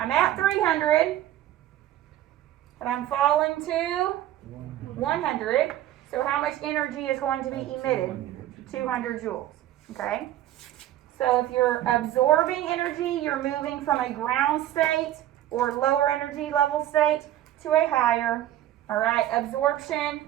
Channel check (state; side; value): quieter; left; 13.1 dB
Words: at 300, and I'm falling to 100. So how much energy is going to be emitted? 200 joules. Okay? So if you're absorbing energy, you're moving from a ground state or lower energy level state to a higher. All right? Absorption,